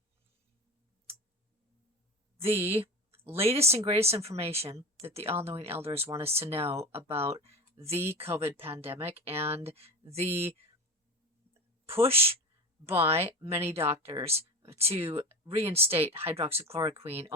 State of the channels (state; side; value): normal; both; correlation 0.28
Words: the latest and greatest information that the all-knowing elders want us to know about the COVID pandemic and the push by many doctors to reinstate hydroxychloroquine,